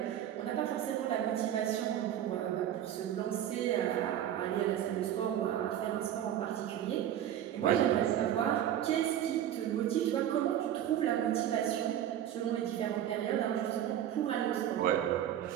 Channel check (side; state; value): left; quieter; 11.0 dB